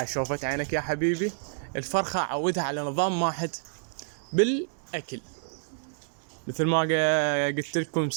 شوفت عينك يا حبيبي، الفرخة اعودها على نظام واحد بالاكل. مثل ما قلت لكم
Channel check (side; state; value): left; silent; digital silence